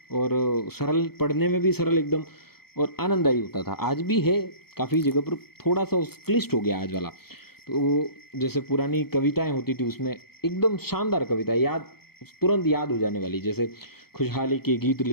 और सरल, पढ़ने में भी सरल एकदम, और आनंददायी होता था। आज भी है काफ़ी जगह पर, थोड़ा सा क्लिष्ट हो गया आज वाला। तो जैसे पुरानी कविताएं होती थी, उसमें एकदम शानदार कविता याद, तुरंत याद हो जाने वाली, जैसे खुशहाली के गीत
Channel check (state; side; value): late; right; 0.95 ms